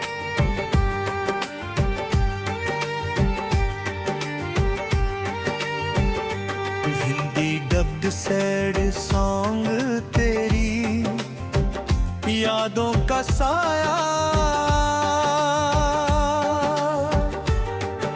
हिंदी डब्ड सैड सॉन्ग तेरी यादों का साया,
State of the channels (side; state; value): both; identical; correlation 1.00